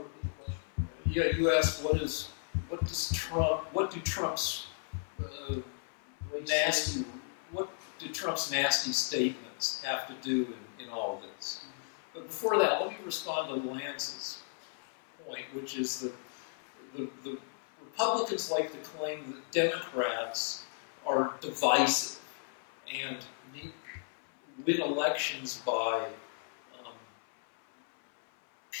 repeat the question? Yeah, you asked what do Trump's nasty statements have to do in all this? Mm-hmm. But before that, let me respond to Lance's point, which is that the Republicans like to claim that Democrats are divisive and win elections by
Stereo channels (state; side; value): silent; right; 55 dB below the other